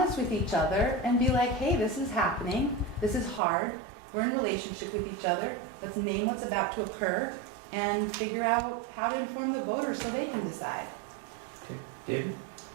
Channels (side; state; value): left; drops out; at 3.4 s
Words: with each other and be like, hey, this is happening. This is hard. We're in relationship with each other. Let's name what's about to occur and figure out how to inform the voters so they can decide. Okay. David?